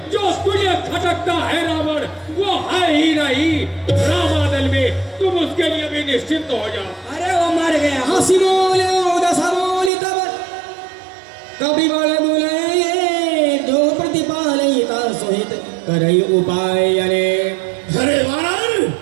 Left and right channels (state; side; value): drops out; left; at 9.9 s